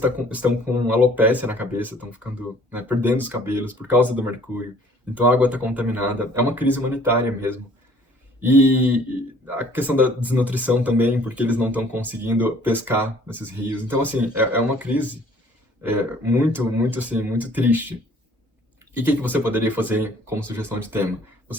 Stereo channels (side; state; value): both; normal; correlation 0.56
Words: estão com alopécia na cabeça, estão ficando, né, perdendo os cabelos por causa do mercúrio. Então a água está contaminada. É uma crise humanitária mesmo. E a questão da desnutrição também, porque eles não estão conseguindo pescar nesses rios. Então, assim, é uma crise muito, muito, assim, muito triste. E o que você poderia fazer como sugestão de tema?